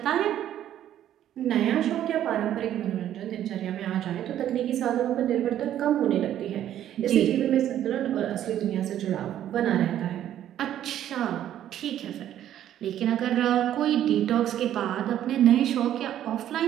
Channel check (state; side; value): quieter; left; 11.4 dB